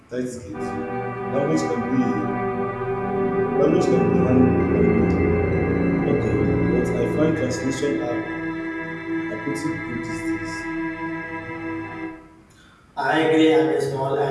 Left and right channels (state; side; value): identical; both; correlation 1.00